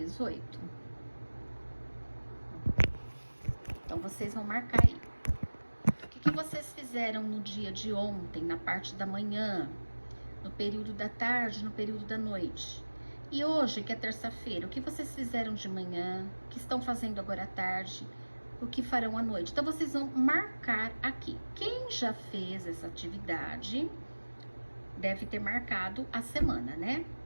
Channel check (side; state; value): both; inverted; correlation -1.00